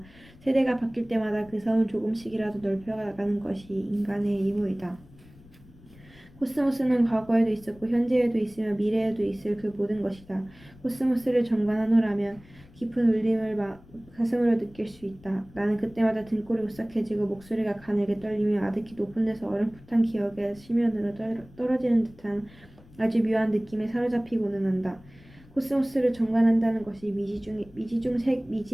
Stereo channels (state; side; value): noise; left; rumble, 24 dB below the sound